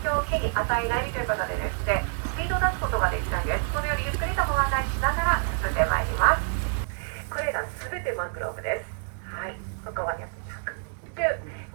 響を木に与えないということでですね、スピードを出すことができないんです。このようにゆっくりとご案内しながら進んでまいります。これらすべてマングローブです。はい、ここまで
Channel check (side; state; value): left; silent; 59 dB below the other